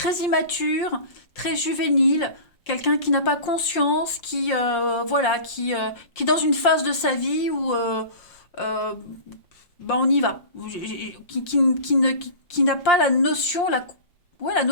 immature, très juvénile, quelqu'un qui n'a pas conscience, qui voilà, qui est dans une phase de sa vie où euh, ben on y va, qui n'a pas la notion, ouais, la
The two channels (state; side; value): late; right; 5.6 ms